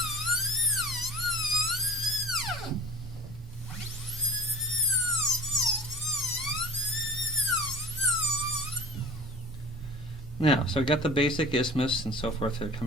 Now, so I've got the basic isthmus and so forth that are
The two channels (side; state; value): both; normal; correlation 0.40